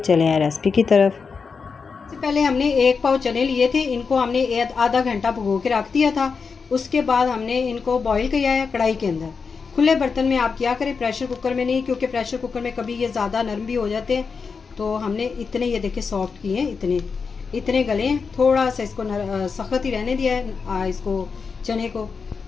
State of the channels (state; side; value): quieter; right; 5.3 dB